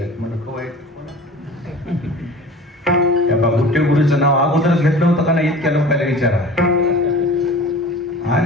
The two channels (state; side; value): normal; both; correlation 0.40